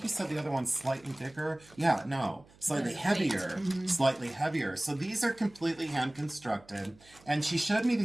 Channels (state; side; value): noise; right; hum, 26 dB below the sound